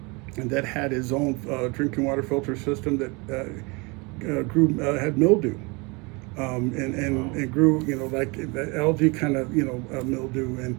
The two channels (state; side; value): quieter; left; 28.4 dB